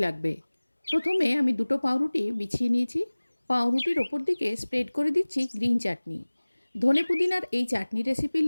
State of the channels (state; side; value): inverted; both; correlation -1.00